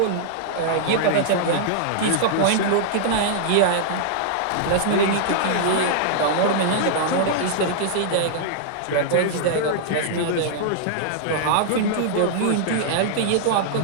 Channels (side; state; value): both; different; correlation -0.01